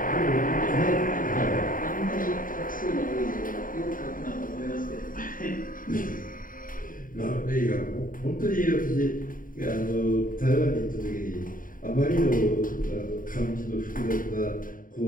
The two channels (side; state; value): right; late; 0.40 ms